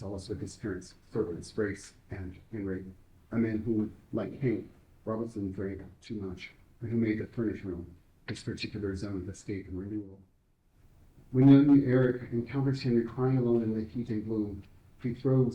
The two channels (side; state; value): both; identical; correlation 1.00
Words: with his parents, servants, Grace and Henry, a man who, like Hank, Robinson drank too much, and who made the furnished room his particular zone of escape and renewal. When young Eric encounters Henry crying alone in the heat and gloom, he